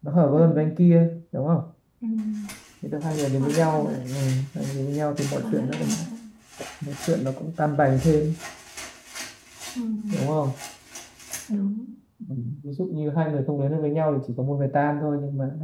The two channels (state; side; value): identical; both; correlation 1.00